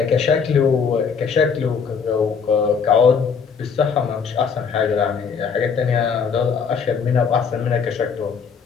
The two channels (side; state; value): right; quieter; 6.1 dB